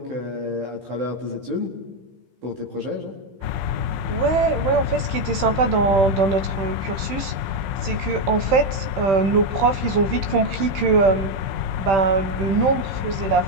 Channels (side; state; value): left; late; 15 ms